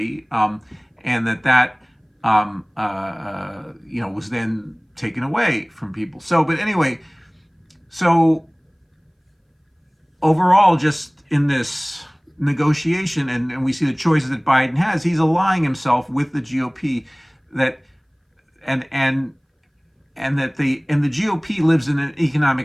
and that was then taken away from people. So, but anyway, so overall, just in this negotiation, and we see the choices that Biden has, he's aligning himself with the GOP, that the GOP lives in an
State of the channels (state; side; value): identical; both; correlation 1.00